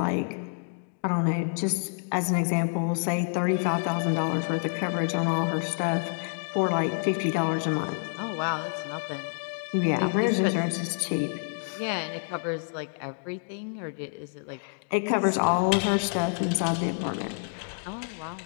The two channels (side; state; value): right; silent; digital silence